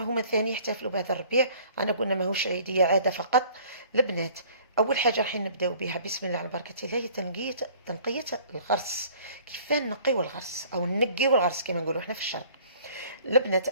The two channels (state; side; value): inverted; both; correlation -0.53